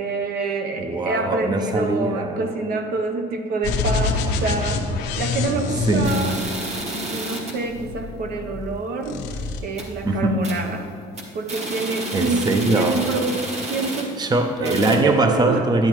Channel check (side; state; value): both; normal; correlation 0.47